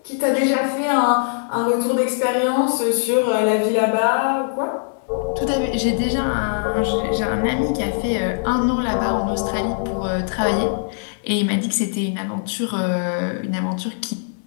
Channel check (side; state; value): right; silent; digital silence